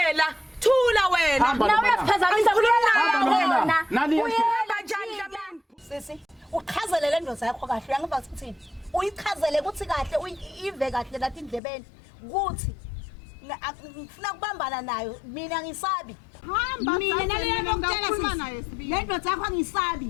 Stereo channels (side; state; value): right; drops out; at 11.6 s